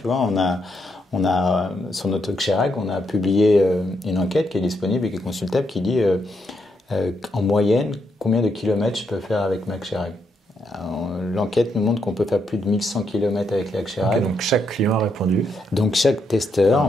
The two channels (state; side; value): normal; both; correlation 0.78